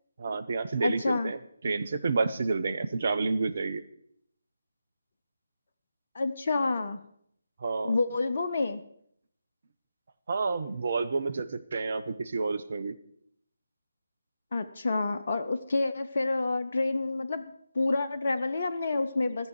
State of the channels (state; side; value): inverted; both; correlation -0.88